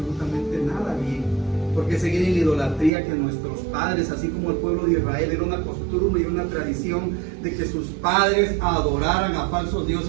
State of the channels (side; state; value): left; drops out; at 2.9 s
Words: nada bien? ¿Por qué seguir en la idolatría que nuestros padres, así como el pueblo de Israel, era una costumbre y una tradición de que sus padres adoraran a falsos